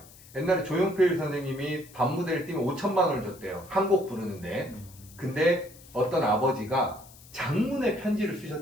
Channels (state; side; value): noise; left; hiss, 22 dB below the sound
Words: 옛날에 조용필 선생님이 밤무대를 뛰면 5천만 원을 줬대요. 한 곡 부르는데. 근데 어떤 아버지가 장문의 편지를